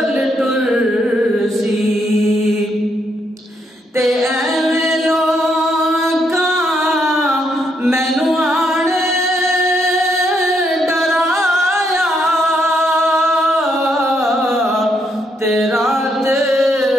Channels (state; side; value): normal; both; correlation 0.75